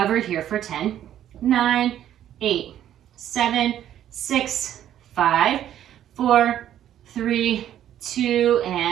here for 10, 9, 8, 7, 6, 5, 4, 3, 2,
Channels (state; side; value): quieter; left; 11.2 dB